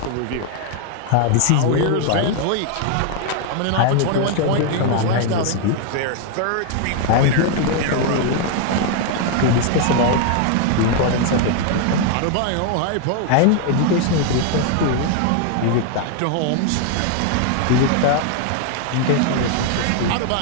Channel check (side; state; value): both; different; correlation 0.00